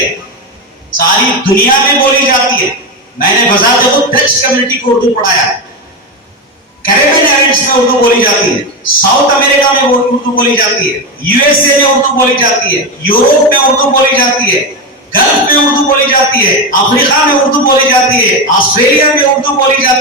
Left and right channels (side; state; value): both; normal; correlation 0.15